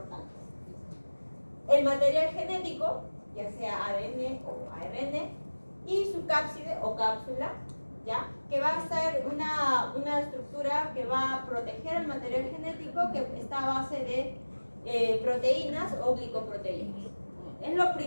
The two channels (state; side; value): inverted; both; correlation -1.00